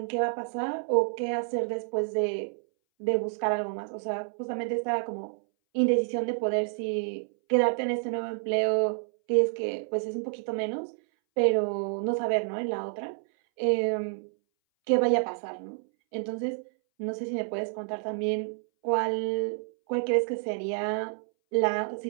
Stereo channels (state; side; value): silent; left; 59 dB below the other